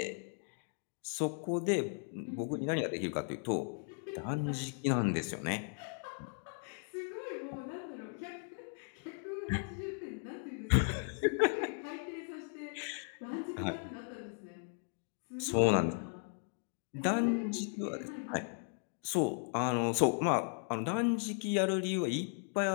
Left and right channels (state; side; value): silent; right; 53 dB below the other